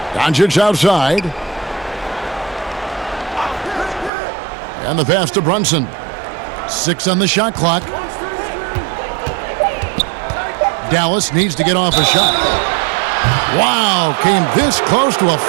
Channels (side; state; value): left; drops out; at 4.1 s